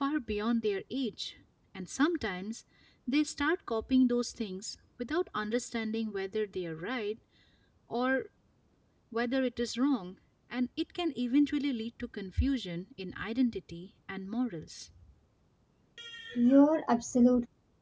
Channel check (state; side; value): identical; both; correlation 1.00